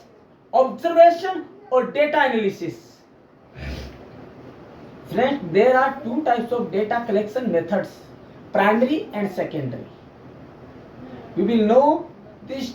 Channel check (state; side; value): identical; both; correlation 1.00